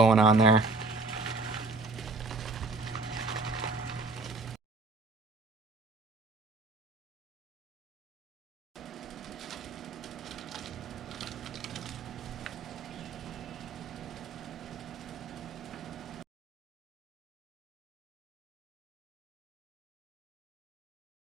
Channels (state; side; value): quieter; left; 3.7 dB